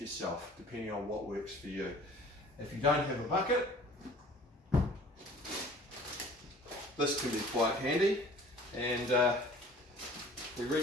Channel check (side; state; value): both; normal; correlation 0.48